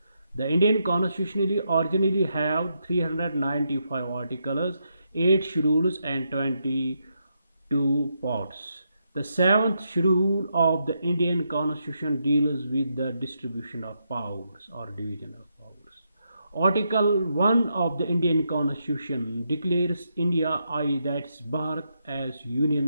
The Indian Constitution originally have 395 articles, 8 schedules and 22 parts. The 7th schedule of the Indian Constitution deals with the distribution of powers or division of powers. Article 1 of the Indian Constitution declares India, that's Bharat, as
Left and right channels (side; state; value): both; inverted; correlation -0.81